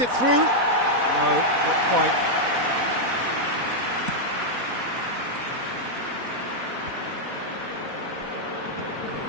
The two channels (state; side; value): late; left; 4.1 ms